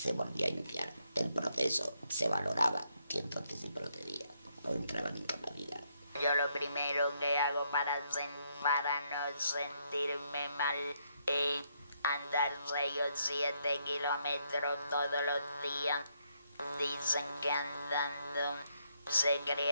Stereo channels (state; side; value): inverted; both; correlation -0.75